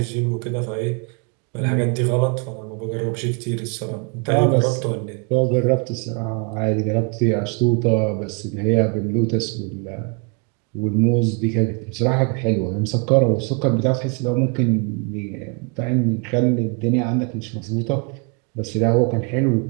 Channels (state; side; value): quieter; left; 35.1 dB